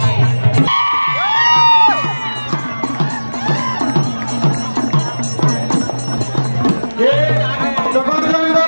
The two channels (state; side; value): inverted; both; correlation -1.00